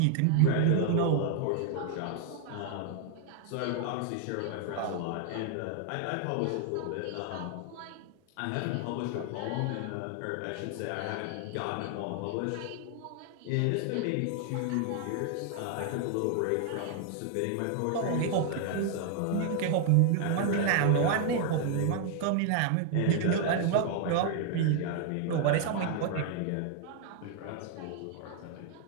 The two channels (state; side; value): different; both; correlation 0.00